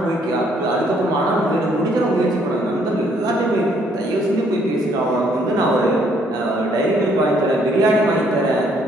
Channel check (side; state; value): both; normal; correlation 0.67